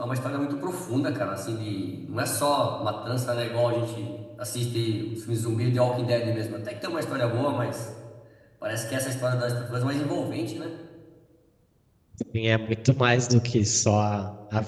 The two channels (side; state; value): both; identical; correlation 1.00